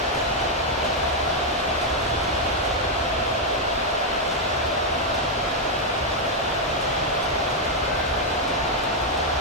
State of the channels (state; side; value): normal; both; correlation 0.00